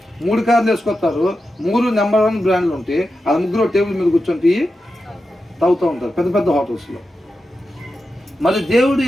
3 కార్లు వేసుకొస్తారు, 3 నెంబర్ 1 బ్రాండ్లు ఉంటాయి, అది ముగ్గురు టేబుల్ మీద కూర్చొని టీ తాగుతూ ఉంటారు పెద్ద హోటల్స్లో. మరి దేవుడు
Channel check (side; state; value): both; normal; correlation 0.90